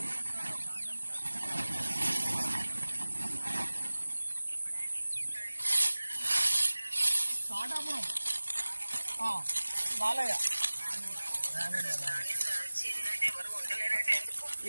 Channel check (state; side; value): inverted; both; correlation -1.00